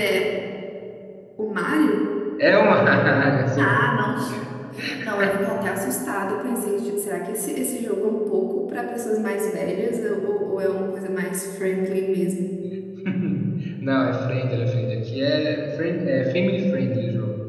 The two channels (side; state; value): both; identical; correlation 1.00